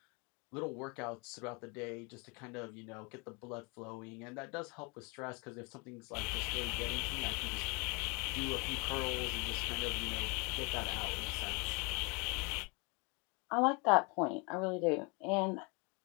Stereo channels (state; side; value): quieter; right; 31.0 dB